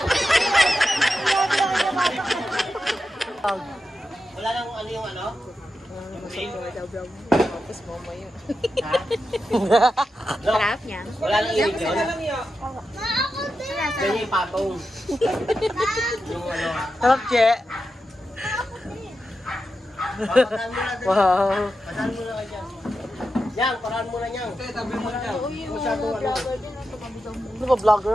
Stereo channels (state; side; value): normal; both; correlation 0.89